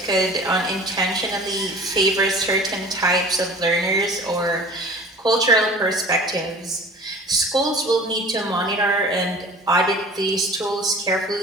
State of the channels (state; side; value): normal; both; correlation 0.43